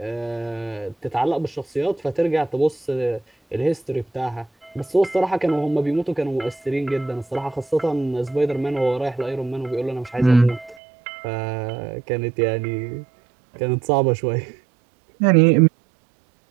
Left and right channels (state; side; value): drops out; left; at 10.8 s